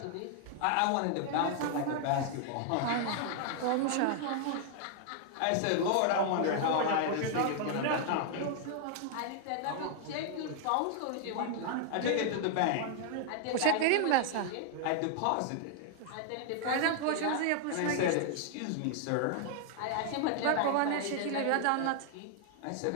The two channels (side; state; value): both; different; correlation 0.00